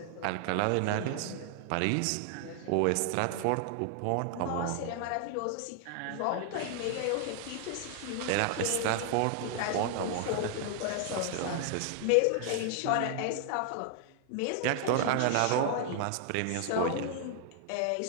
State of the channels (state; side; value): different; both; correlation 0.00